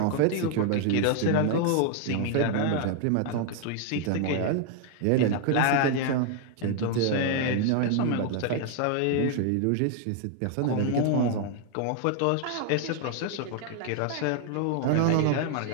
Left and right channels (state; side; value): different; both; correlation 0.00